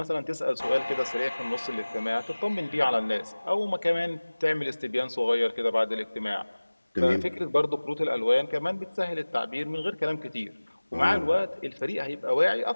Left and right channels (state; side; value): inverted; both; correlation -1.00